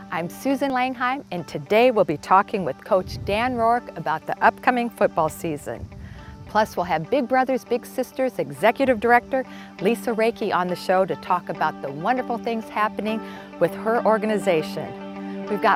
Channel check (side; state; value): both; identical; correlation 1.00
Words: I'm Susan Langheim, and today we'll be talking with Coach Dan Rourke about the upcoming football season. Plus, we'll have Big Brothers Big Sisters Executive Director Lisa Reiki on the show to talk about the wonderful things happening with her organization. We've